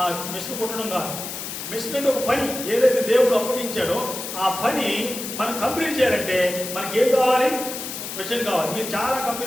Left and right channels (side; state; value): left; noise; hiss, 7 dB below the sound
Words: మిషన్ కుట్టడం కాదు. మిషన్ అంటే ఒక పని. ఏదైతే దేవుడు అప్పగించాడో ఆ పని మనం కంప్లీట్ చేయాలంటే మనకి ఏం కావాలి? విజన్ కావాలి. మీరు చాలా